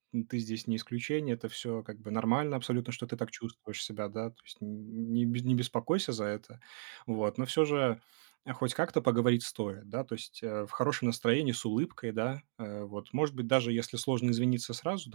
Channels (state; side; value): silent; left; digital silence